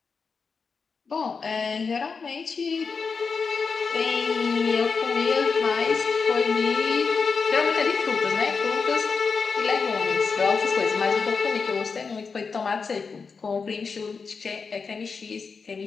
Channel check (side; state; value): right; quieter; 5.1 dB